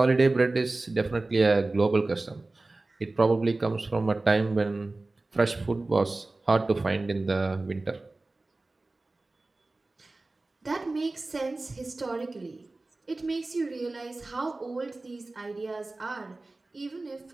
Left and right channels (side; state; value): left; quieter; 3.1 dB